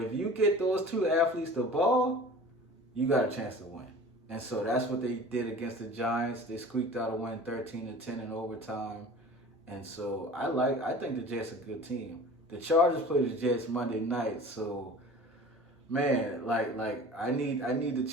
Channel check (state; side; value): normal; both; correlation 0.41